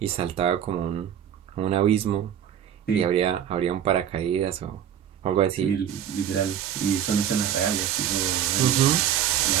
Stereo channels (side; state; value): left; quieter; 9.6 dB